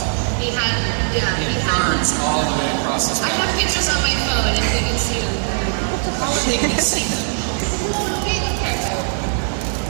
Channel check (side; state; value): left; silent; digital silence